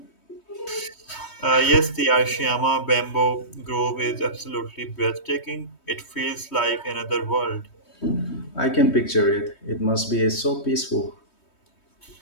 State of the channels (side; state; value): right; late; 3.2 ms